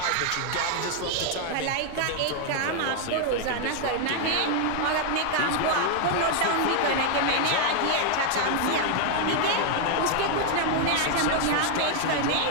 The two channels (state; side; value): different; both; correlation 0.00